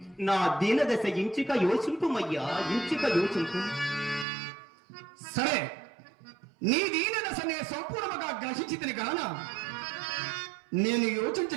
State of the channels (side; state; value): left; drops out; at 4.2 s